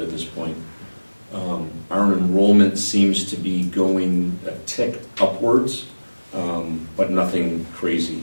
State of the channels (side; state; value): both; inverted; correlation -1.00